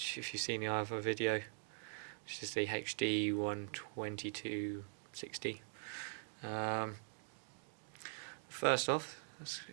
if you've seen the other video, which is the HD12260. First off, let's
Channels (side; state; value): left; silent; digital silence